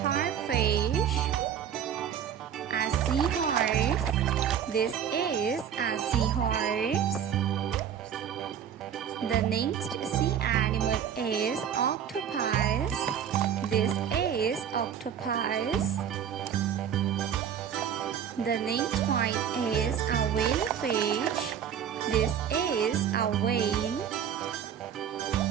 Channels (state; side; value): quieter; left; 8.7 dB